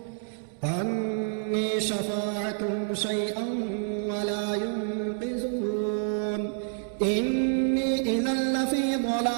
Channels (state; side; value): silent; left; digital silence